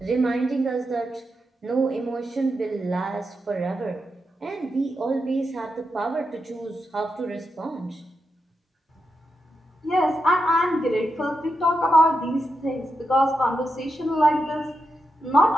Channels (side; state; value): both; normal; correlation 0.86